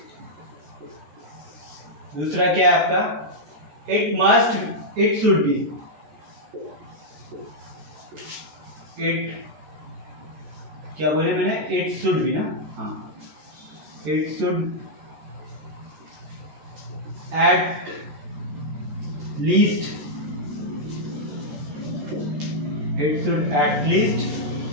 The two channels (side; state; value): left; late; 14 ms